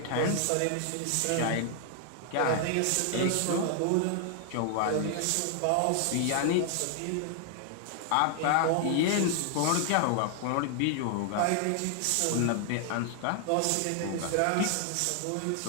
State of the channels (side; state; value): both; different; correlation 0.00